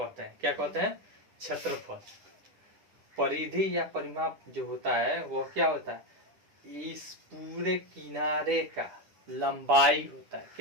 हैं। क्या कहते हैं, क्षेत्रफल। परिधि या परिमाप जो होता है वो क्या होता है, इस पूरे किनारे का लंबाई होता है।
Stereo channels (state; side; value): late; left; 9.9 ms